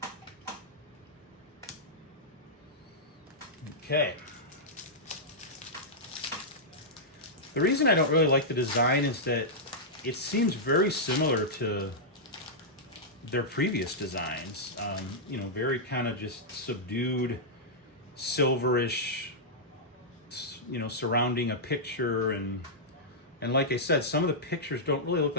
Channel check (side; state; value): both; normal; correlation -0.10